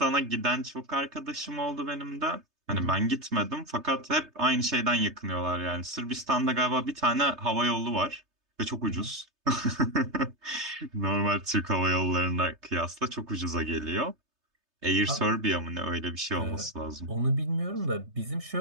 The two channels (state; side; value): late; left; 3.3 ms